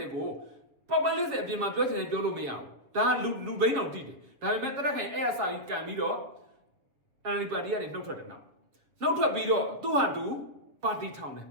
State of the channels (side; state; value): left; late; 7.3 ms